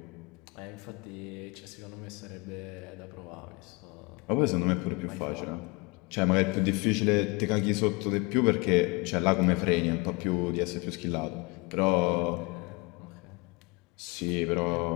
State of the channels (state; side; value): quieter; right; 27.2 dB